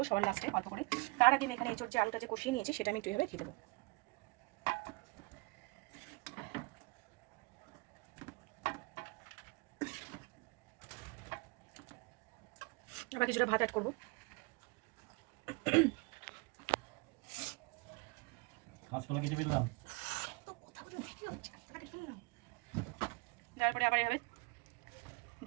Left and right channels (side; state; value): left; quieter; 27.3 dB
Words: সবার লাস্টে অল্প করে। তার আগে আমি এখানে এঁচোড় যে আলুটা যে কষিয়ে নিয়েছি সেটা আমি একটু এভাবে দিয়ে দেবো। আবার কিছুটা ভাত অ্যাড করবো। তারপরে আবার এভাবে